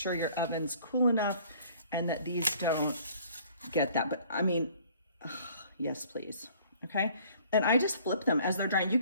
your oven's cool enough and that these don't get that. But I mean, yes, please. Okay. And I just flip them as they're drying. You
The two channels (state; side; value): inverted; both; correlation -0.55